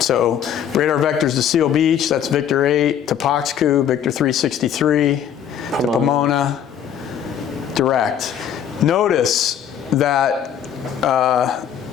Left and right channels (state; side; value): quieter; right; 9.1 dB